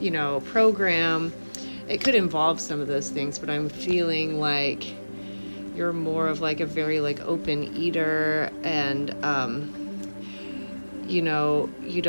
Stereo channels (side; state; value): both; inverted; correlation -1.00